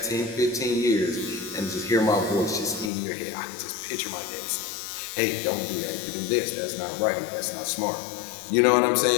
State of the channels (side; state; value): right; drops out; at 2.9 s